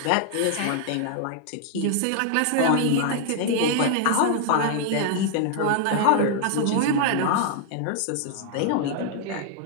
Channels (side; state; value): both; different; correlation 0.00